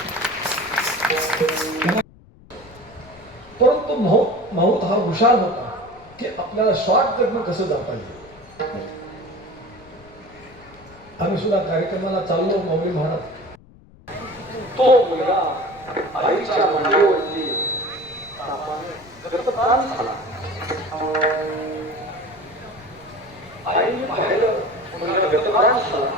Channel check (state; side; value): noise; left; rumble, 24 dB below the sound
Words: परंतु माऊत हा हुशार होता की आपल्याला शॉर्टकटनं कसं जाता येईल आम्ही सुद्धा कार्यक्रमाला चाललो माऊली महाराज तो मुलगा आईच्या मांडीवरती गतप्राण झाला आईने पाहिलं मुलगा गतप्राण झाला